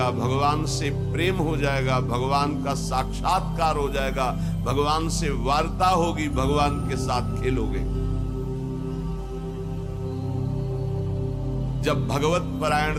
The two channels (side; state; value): both; identical; correlation 1.00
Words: भगवान से प्रेम हो जाएगा, भगवान का साक्षात्कार हो जाएगा, भगवान से वार्ता होगी, भगवान के साथ खेलोगे। जब भगवत